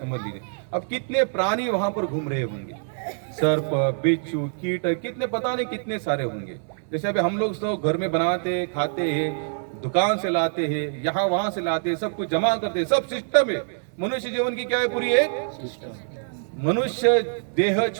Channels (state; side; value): silent; left; 62 dB below the other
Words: लीजिए। अब कितने प्राणी वहां पर घूम रहे होंगे, सर्प, बिच्छू, कीट, कितने पता नहीं कितने सारे होंगे। जैसे अभी हम लोग सब घर में बनाते खाते हैं, दुकान से लाते हैं, यहाँ वहां से लाते हैं, सब कुछ जमा करते हैं, सब सिस्टम है। मनुष्य जीवन की क्या है? पूरी एक मनुष्य देह